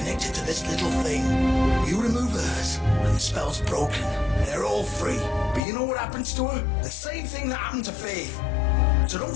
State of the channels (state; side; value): drops out; right; at 5.6 s